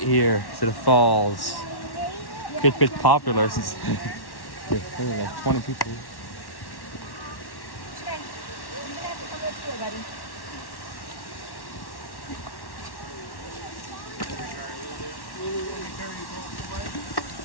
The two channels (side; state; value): right; late; 1.1 ms